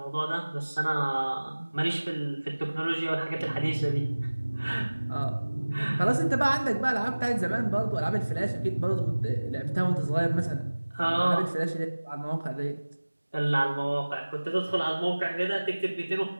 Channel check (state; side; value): inverted; both; correlation -1.00